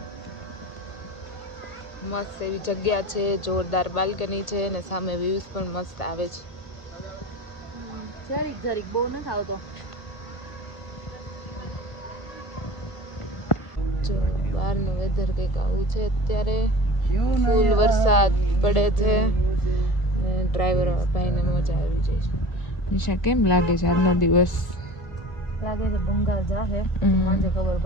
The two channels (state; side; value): late; right; 1.5 ms